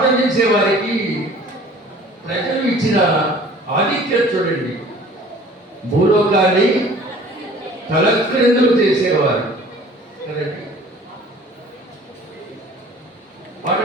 చేసే వారికి ప్రజలు ఇచ్చిన ఆధిక్యత చూడండి. భూలోకాన్ని తలక్రిందులు చేసేవారు కదండి. పాట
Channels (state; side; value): normal; both; correlation 0.49